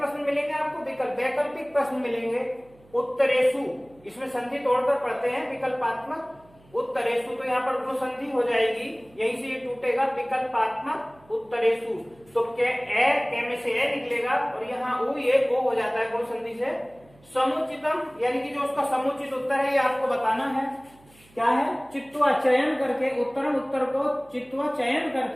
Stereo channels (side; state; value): right; noise; hum, 28 dB below the sound